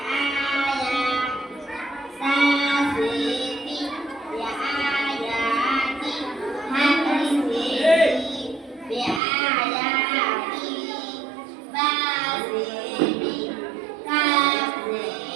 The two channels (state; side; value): drops out; left; at 9.2 s